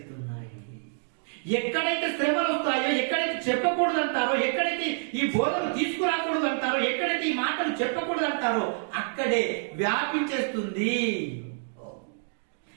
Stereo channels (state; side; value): silent; left; digital silence